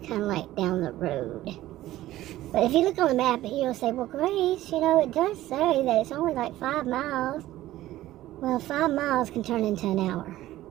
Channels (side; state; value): left; quieter; 15.1 dB